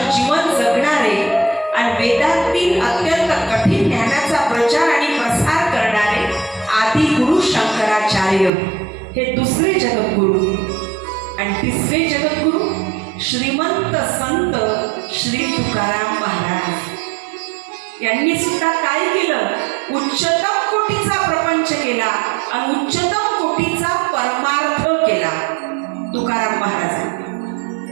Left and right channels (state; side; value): drops out; left; at 8.5 s